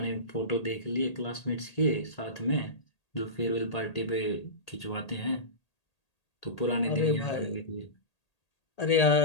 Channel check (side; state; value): right; late; 1.8 ms